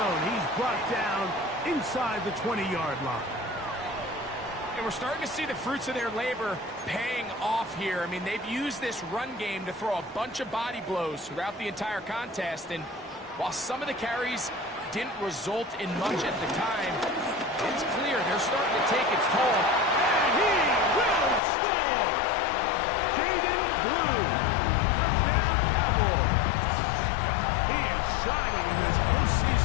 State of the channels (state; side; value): drops out; right; at 21.4 s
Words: He's brought down inside the 20-yard line. And we're starting to see the fruits of their labor paying off here. I mean, they've used this run game to throw a bunch of body blows throughout the entire contest. And while some of the carries didn't result in much at the time, it's clear they're starting to take its toll. And he will score! Jaden Blue, touchdown Cowboys. He is shining in this